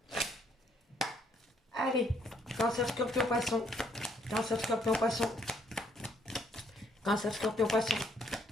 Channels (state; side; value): normal; both; correlation 0.68